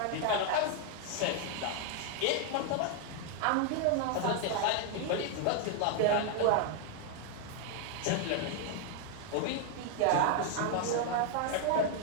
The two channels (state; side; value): different; both; correlation 0.01